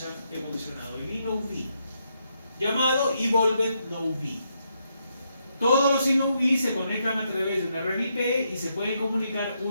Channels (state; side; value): inverted; both; correlation -0.79